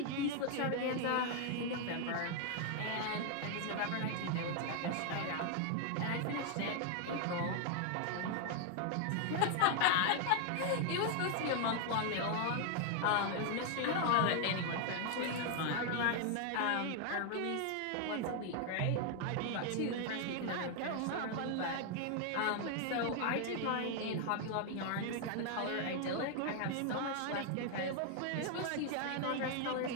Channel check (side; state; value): both; different; correlation 0.00